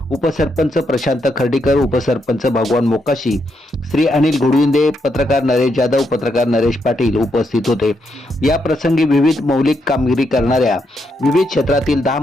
उपसरपंच प्रशांत खर्डीकर, उपसरपंच भगवान मोकाशी, श्री अनिल घोडविंदे, पत्रकार नरेश जाधव, पत्रकार नरेश पाटील उपस्थित होते. या प्रसंगी विविध मौलिक कामगिरी करणाऱ्या विविध क्षेत्रातील 10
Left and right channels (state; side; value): normal; both; correlation 0.79